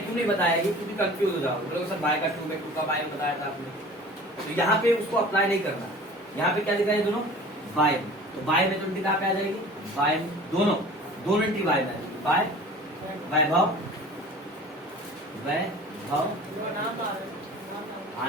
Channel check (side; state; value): both; normal; correlation 0.42